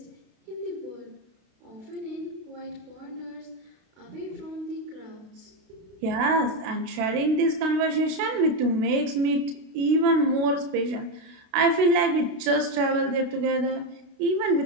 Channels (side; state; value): left; late; 32 ms